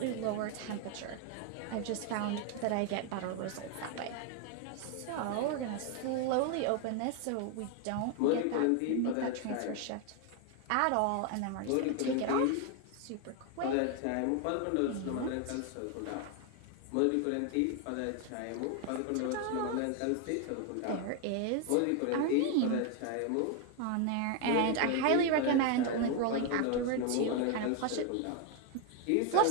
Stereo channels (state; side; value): different; both; correlation 0.01